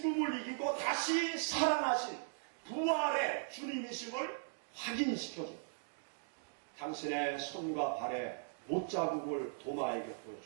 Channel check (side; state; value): left; silent; digital silence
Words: 이기고 다시 살아나신 부활의 주님이심을 확인시켜줍니다. 당신의 손과 발에 못자국을 도마에게